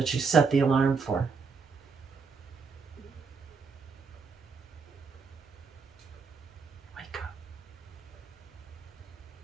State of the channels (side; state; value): left; quieter; 5.0 dB